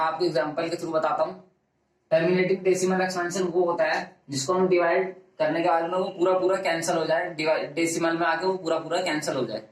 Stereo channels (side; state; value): both; identical; correlation 1.00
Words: आपको एग्जांपल के थ्रू बताता हूँ। टर्मिनेटिंग डेसिमल एक्सपेंशन वो होता है जिसको हम डिवाइड करने के बाद में वो पूरा कैंसिल हो जाए, डेसिमल में आके वो पूरा कैंसिल हो जाए।